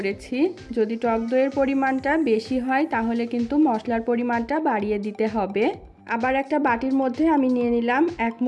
যদি টক দইয়ের পরিমাণটা বেশি হয় তাহলে কিন্তু মশলার পরিমাণটা বাড়িয়ে দিতে হবে। আবার একটা বাটির মধ্যে আমি নিয়ে নিলাম 1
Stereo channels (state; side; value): identical; both; correlation 1.00